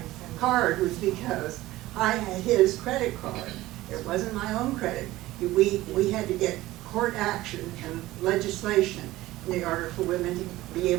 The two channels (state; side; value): quieter; left; 17.1 dB